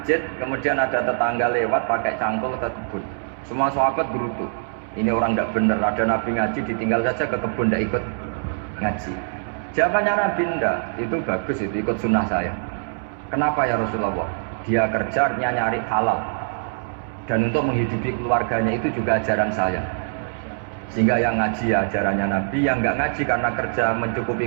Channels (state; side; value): silent; left; 63 dB below the other